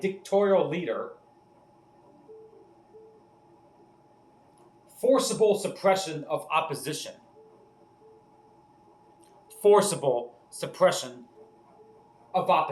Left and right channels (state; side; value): identical; both; correlation 1.00